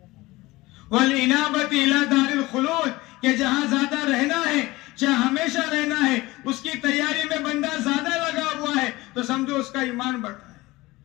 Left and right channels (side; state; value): right; quieter; 20.1 dB